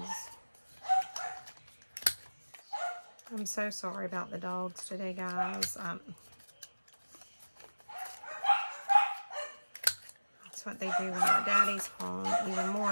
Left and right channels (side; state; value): both; inverted; correlation -1.00